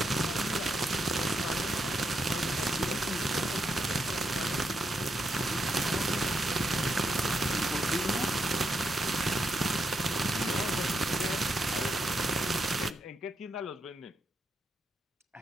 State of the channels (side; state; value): both; normal; correlation 0.81